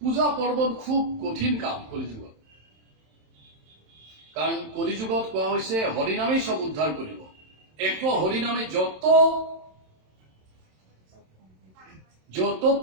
পূজা পাৰ্বণ খুব কঠিন কাম কলিযুগত, কাৰণ কলিযুগত কোৱা হৈছে হৰিনামেই চব উদ্ধাৰ কৰিব। এক হরিনামে যত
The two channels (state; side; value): late; left; 27 ms